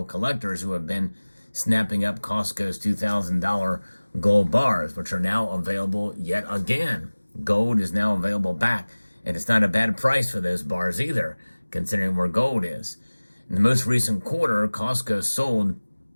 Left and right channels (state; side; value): inverted; both; correlation -1.00